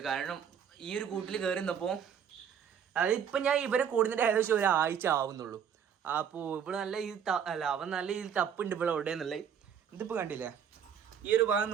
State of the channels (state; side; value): quieter; left; 8.1 dB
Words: കാരണം ഈ ഒരു കൂട്ടിൽ കയറി നിന്നപ്പോൾ അതായത് ഇപ്പം ഞാൻ ഇവരെ കൂടുന്നതിൻ്റെ ഏകദേശം 1 ആഴ്ച ആവുന്നുള്ളൂ. അപ്പോൾ ഇവിടെ നല്ല അവൻ നല്ല രീതിയിൽ തപ്പുണ്ട് ഇവിടെ എവിടെയെന്നുള്ളത്. ഇതിപ്പോൾ കണ്ടില്ലേ, ഈ ഒരു ഭാഗം